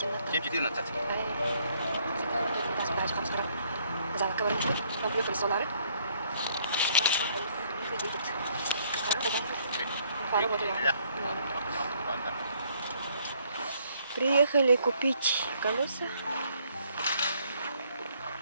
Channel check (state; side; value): inverted; both; correlation -0.66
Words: 7:14. Занок говорит, нам приехали солары. Едет. Приехали купить колеса